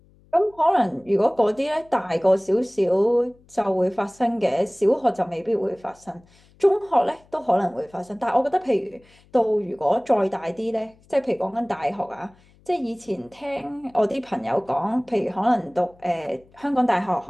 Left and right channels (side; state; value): left; noise; hum, 30 dB below the sound